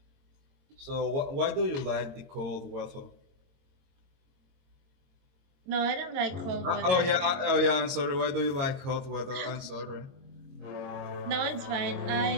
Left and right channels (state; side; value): late; left; 22 ms